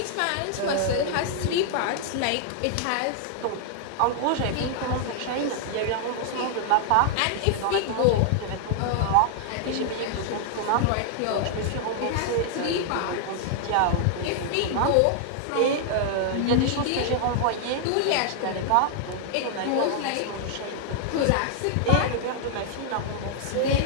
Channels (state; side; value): different; both; correlation 0.00